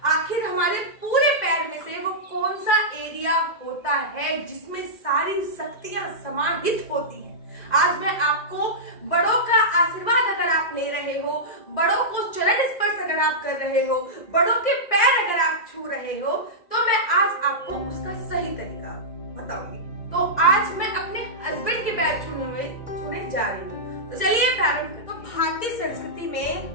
आखिर हमारे पूरे पैर में से वो कौन सा एरिया होता है जिसमें सारी शक्तियां समाहित होती हैं। आज मैं आपको बड़ों का आशीर्वाद अगर आप ले रहे हो, बड़ों को चरण स्पर्श अगर आप कर रहे हो, बड़ों के पैर अगर आप छू रहे हो, तो मैं आज आपको उसका सही तरीका बताऊंगी। तो आज मैं अपने हस्बैंड के पैर छूने जा रही हूँ। तो चलिए प्रारंभ करें। तो भारतीय संस्कृति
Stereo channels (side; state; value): right; late; 2.0 ms